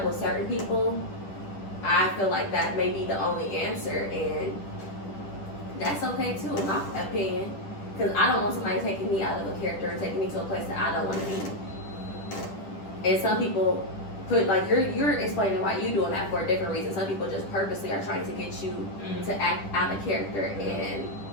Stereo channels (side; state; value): right; late; 10 ms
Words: with certain people, I feel like that may be the only answer, and that's okay too, in my opinion. Because I don't want somebody taking me out of a character and taking me to a place that I don't want to be. And some people put, like, you're explaining why you're doing that for a different reason. Some people just purposely are trying to get you to act out of character, and